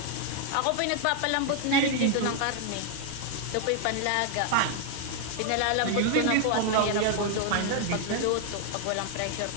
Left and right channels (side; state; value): both; different; correlation 0.00